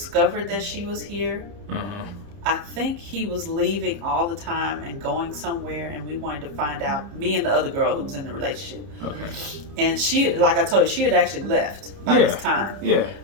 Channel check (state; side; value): late; left; 30 ms